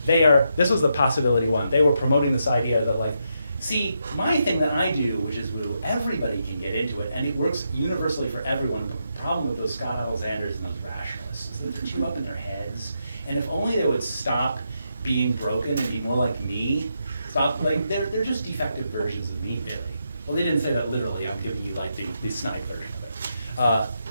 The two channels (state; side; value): inverted; both; correlation -0.82